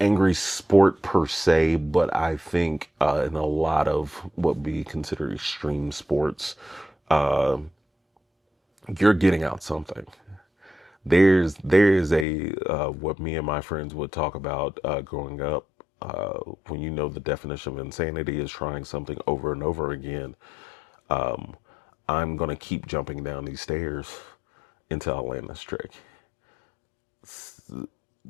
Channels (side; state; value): right; drops out; at 12.2 s